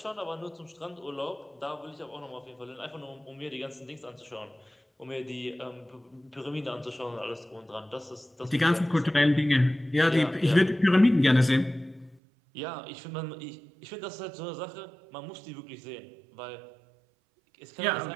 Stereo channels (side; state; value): left; drops out; at 12.2 s